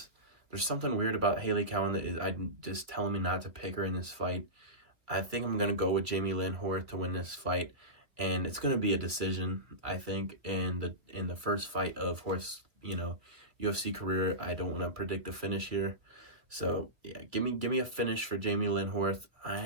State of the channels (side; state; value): left; late; 2.3 ms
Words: there's something weird about Hailey Cowan that is just telling me not to pick her in this fight. I think I'm going to go with Jamey-Lyn Horth to win this fight, and it's going to be a decision, I think, in the first fight of Horth's, UFC career. I don't want to predict the finish here. So, yeah, give me a finish for Jamey-Lyn Horth,